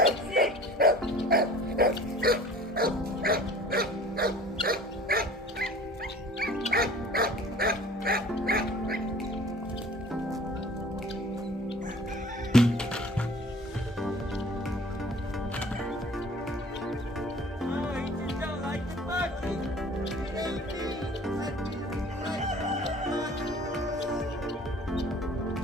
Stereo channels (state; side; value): normal; both; correlation 0.47